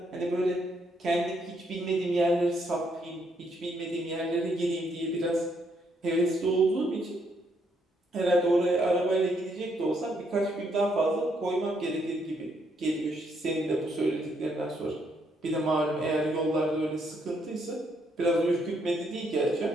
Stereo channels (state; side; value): normal; both; correlation 0.73